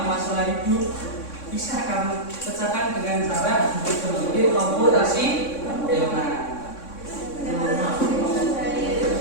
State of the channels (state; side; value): late; right; 3.6 ms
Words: masalah hidup, bisa kamu pecahkan dengan cara berpikir komputasional.